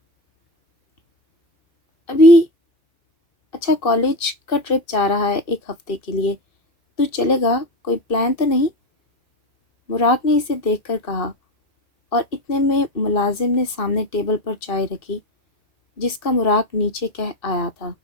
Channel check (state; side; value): late; right; 2.6 ms